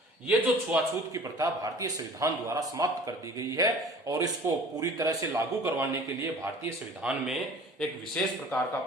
ये जो छुआछूत की प्रथा भारतीय संविधान द्वारा समाप्त कर दी गई है और इसको पूरी तरह से लागू करवाने के लिए भारतीय संविधान में एक विशेष प्रकार का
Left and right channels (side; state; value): both; normal; correlation 0.46